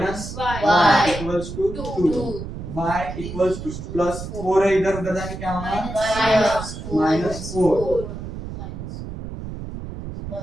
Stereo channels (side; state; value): right; noise; rumble, 9 dB below the sound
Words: y equals to 2, y equals to plus 4 है, इधर उधर जाके क्या होगा -4